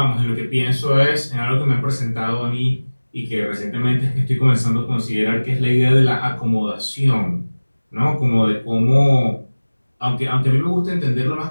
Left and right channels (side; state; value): both; inverted; correlation -1.00